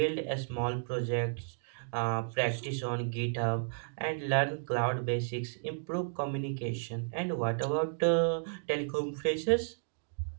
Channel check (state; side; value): silent; left; digital silence